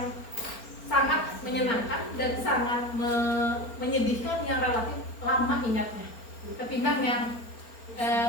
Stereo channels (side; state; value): right; late; 4.4 ms